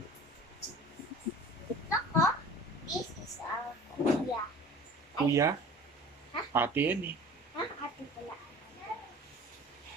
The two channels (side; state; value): both; normal; correlation 0.43